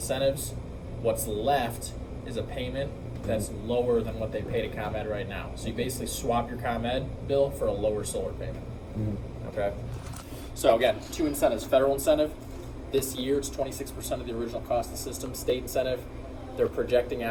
What's left is a payment that's lower than what they pay to ComEd right now. So you basically swap your ComEd bill for a lower solar payment. Okay. So again, two incentives. Federal incentive, this year it's 26% of the original cost of the system. State incentive, they're projecting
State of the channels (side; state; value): both; identical; correlation 1.00